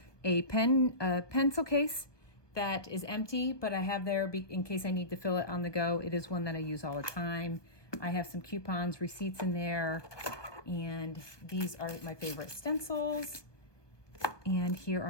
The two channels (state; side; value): late; right; 1.2 ms